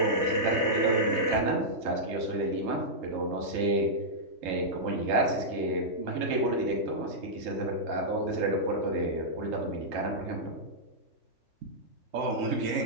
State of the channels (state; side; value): late; left; 3.3 ms